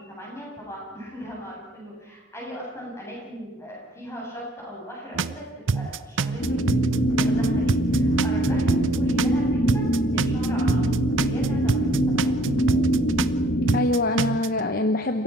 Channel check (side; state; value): both; normal; correlation 0.60